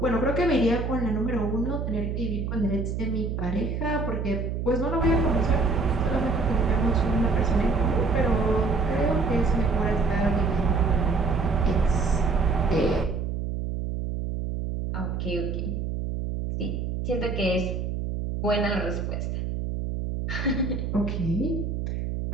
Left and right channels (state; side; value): noise; right; hum, 3 dB below the sound